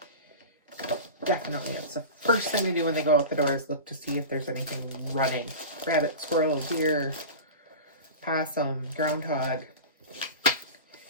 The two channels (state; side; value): inverted; both; correlation -0.31